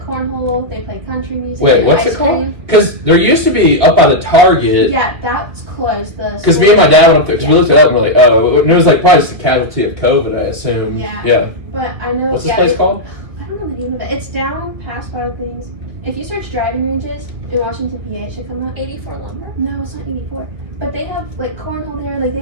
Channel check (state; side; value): late; left; 2.1 ms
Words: They play country music. Wait, what's it called? Because there used to be up by the Target. Yeah, that's closed. Because me and my dad went up there because we looked it up and we're like, oh, it was like probably just a casualty of COVID, I assume. Yeah. But I know. What's this place called? I don't know the name of it. It's down past Wild Things. If you search driving ranges in Washington, PA, it should come up. 84 Lumber? No, it's not 84. But they have like cornhole there. Like they